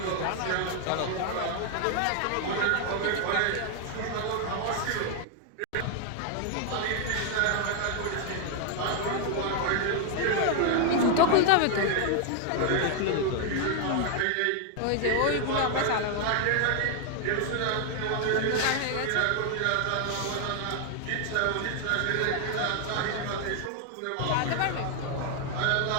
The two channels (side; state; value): both; different; correlation 0.00